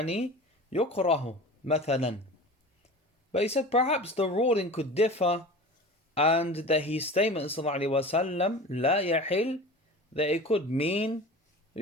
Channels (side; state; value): both; normal; correlation 0.36